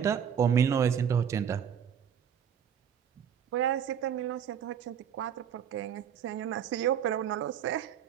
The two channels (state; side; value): quieter; left; 8.4 dB